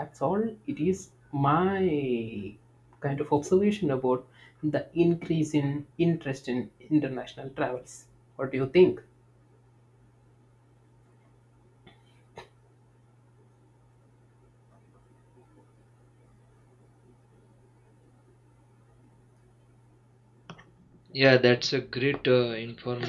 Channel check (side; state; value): both; identical; correlation 1.00